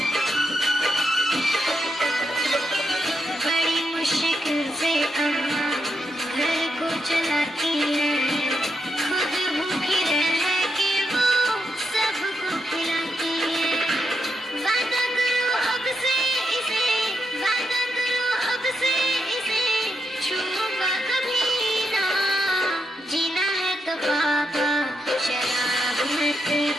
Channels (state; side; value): normal; both; correlation 0.82